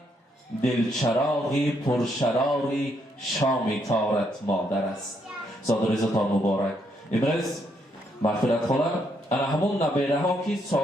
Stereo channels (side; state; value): both; normal; correlation 0.74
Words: دلچراغی پرشراری شام تارت مادر است. زادروزتان مبارک. امروز مغفرت خواهم انا همون نبیره ها که